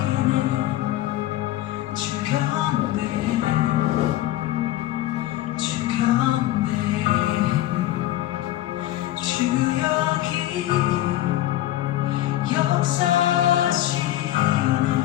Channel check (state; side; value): quieter; right; 14.6 dB